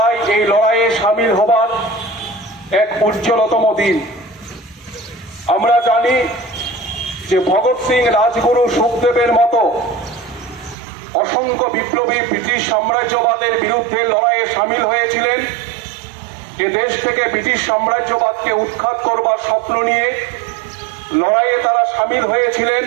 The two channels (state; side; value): drops out; left; at 10.8 s